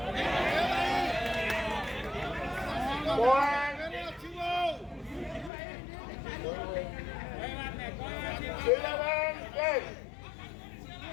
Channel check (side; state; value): right; drops out; at 5.5 s